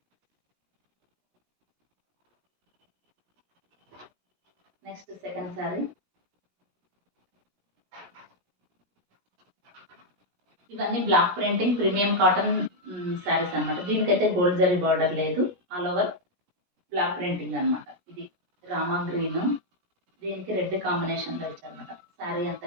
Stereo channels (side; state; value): left; late; 17 ms